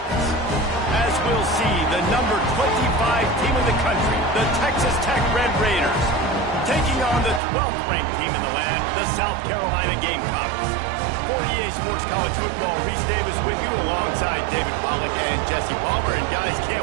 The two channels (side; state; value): left; drops out; at 7.4 s